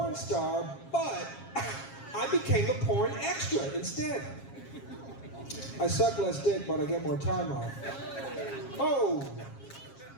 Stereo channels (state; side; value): late; right; 7.4 ms